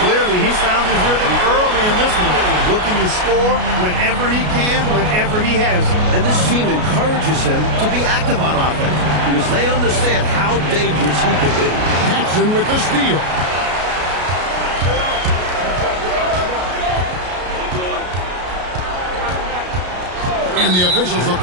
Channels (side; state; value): left; late; 33 ms